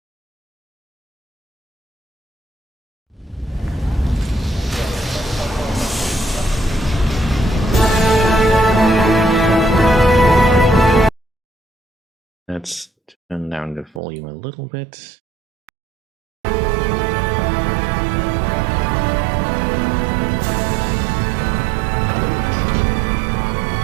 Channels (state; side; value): drops out; left; at 14.0 s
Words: Let's turn down the volume a little bit.